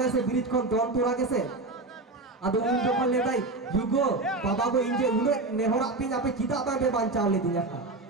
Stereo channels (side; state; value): left; quieter; 3.2 dB